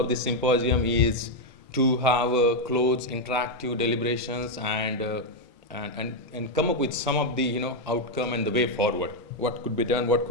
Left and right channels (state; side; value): normal; both; correlation 0.02